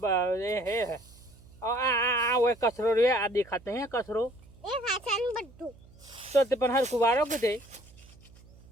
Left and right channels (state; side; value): noise; right; hum, 24 dB below the sound